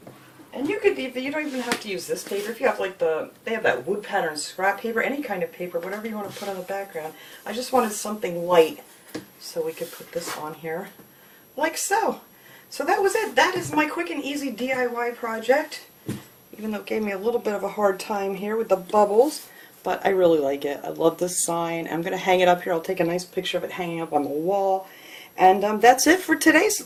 And you don't even have to use this paper. If you have like they have that wood pattern scrap paper, any kind of paper, whatever you want to put on the background. I just wanted something light so we could put this on here like so. So that was it. That is my quick and easy DIY project. Even though it gave me a little bit of a hard time here with the bubbles, but I really like it. I love this sign. I'm going to hang it up here. I'll take a nice picture of it hanging up on the wall. And that's it for today. So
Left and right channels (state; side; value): identical; both; correlation 1.00